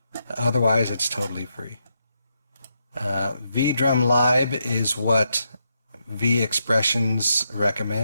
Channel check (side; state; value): both; inverted; correlation -0.82